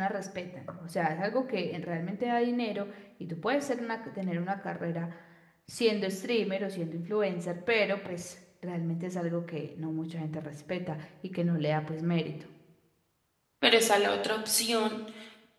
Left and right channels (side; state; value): both; identical; correlation 1.00